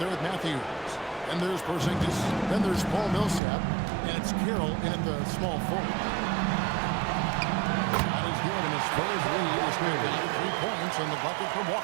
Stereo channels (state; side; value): drops out; left; at 3.4 s